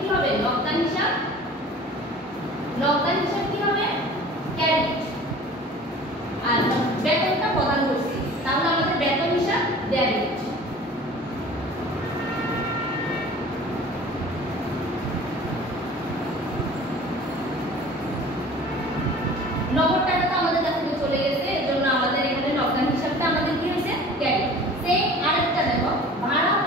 হবে, নগদান হিসাব কি হবে, ক্রেডিট। আর বেতনটা প্রদান করছি, তাহলে আমাদের বেতন হিসাব ডেবিট। নগদ টাকা তো আমাদের কাছ থেকে চলে গেছে, এজন্য আমাদের এখানে নগদান হিসাবটা আমাদের কি হয়েছে, ক্রেডিট। সেই আরেকটা দেখো, ভাড়া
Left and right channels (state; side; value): normal; both; correlation 0.44